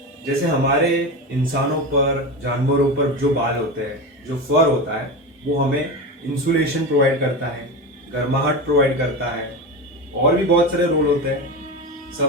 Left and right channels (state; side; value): normal; both; correlation 0.22